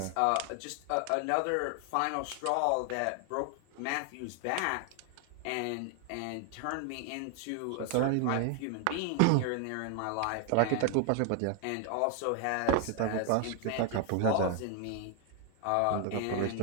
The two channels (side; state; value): both; different; correlation 0.00